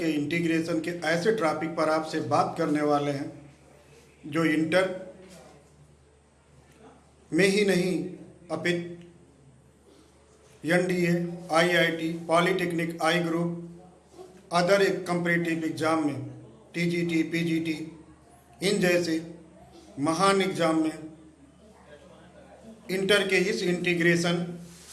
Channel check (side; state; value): both; identical; correlation 1.00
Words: इंटीग्रेशन के ऐसे टॉपिक पर आपसे बात करने वाले हैं जो इंटर में ही नहीं अपितु एनडीए, आईआईटी, पॉलिटेक्निक, आई ग्रुप, अदर एक कम्पिटिटिव एग्जाम में, टीजीटी, पीजीटी, इन जैसे महान एग्जाम में इंटर के इस इंटीग्रेशन